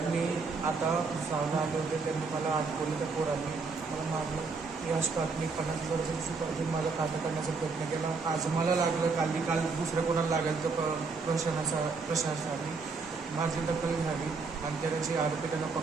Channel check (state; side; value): quieter; left; 4.4 dB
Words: मी आता भुसावळला आले होते. त्यांनी मला अडकवलं. त्या पोरांनी मला मारलं. याच मी 50,000 सुपारी माझा खाता करण्याचा प्रयत्न केला. आज मला लागलं, काल दुसऱ्या कोणाला लागेल तर प्रशासनाने माझी दखल घ्यावी आणि त्याची आरोपी त्यांना